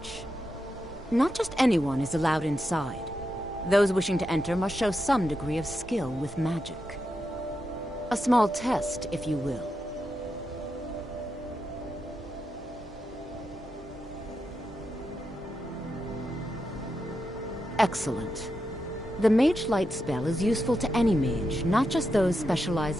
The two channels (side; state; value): both; normal; correlation 0.86